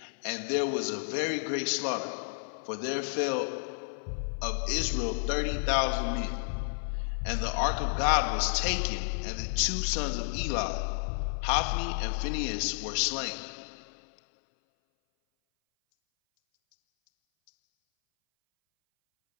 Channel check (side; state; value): right; silent; 57 dB below the other